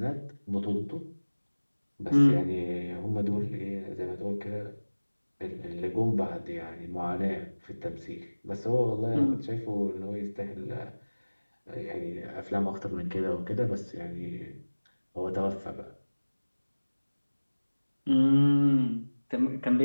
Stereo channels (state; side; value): inverted; both; correlation -1.00